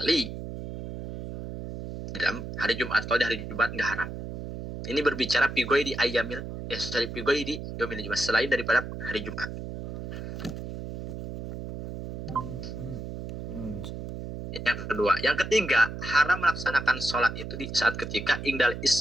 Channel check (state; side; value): noise; right; hum, 8 dB below the sound